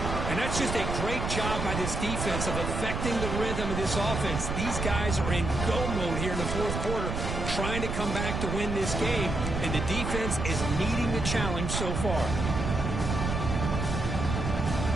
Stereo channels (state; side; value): noise; right; rumble, 3 dB below the sound